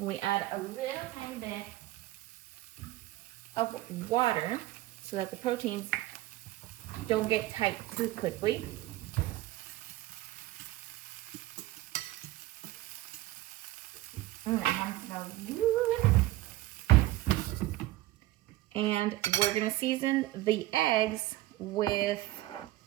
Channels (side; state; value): left; quieter; 16.6 dB